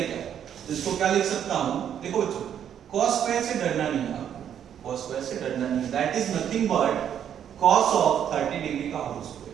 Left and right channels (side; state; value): left; quieter; 9.3 dB